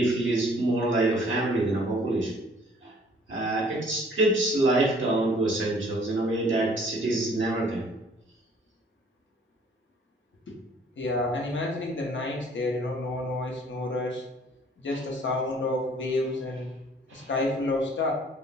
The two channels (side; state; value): both; normal; correlation 0.57